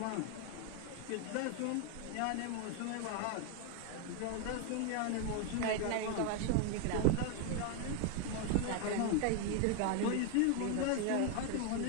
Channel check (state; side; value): different; both; correlation 0.01